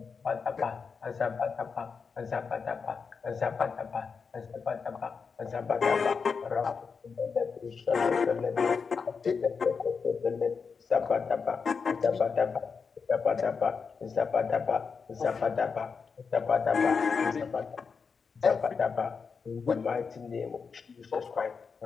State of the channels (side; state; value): right; quieter; 5.5 dB